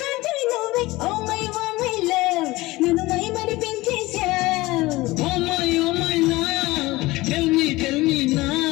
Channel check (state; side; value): quieter; right; 20.0 dB